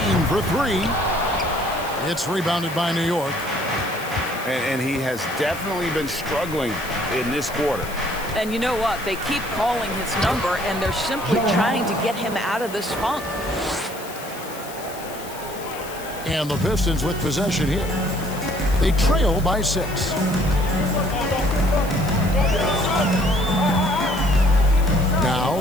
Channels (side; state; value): left; noise; hiss, 15 dB below the sound